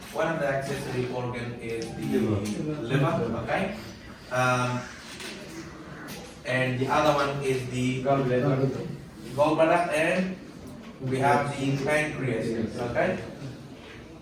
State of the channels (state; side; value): identical; both; correlation 1.00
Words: one of the accessory organ is the liver. Okay. And the other one is the gallbladder, and we have the pancreas. Okay.